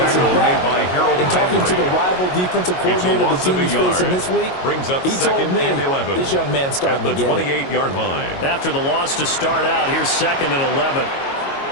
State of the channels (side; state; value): right; late; 22 ms